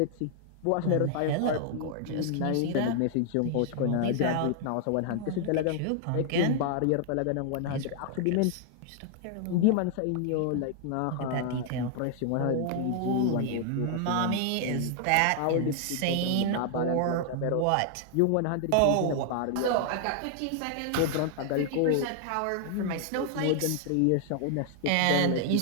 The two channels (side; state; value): both; different; correlation 0.00